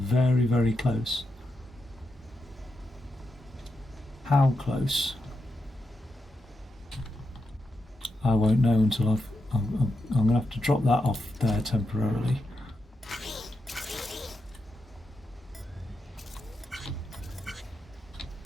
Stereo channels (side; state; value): both; normal; correlation 0.86